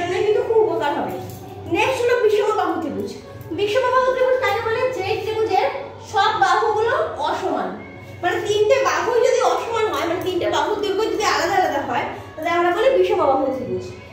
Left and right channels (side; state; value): both; identical; correlation 1.00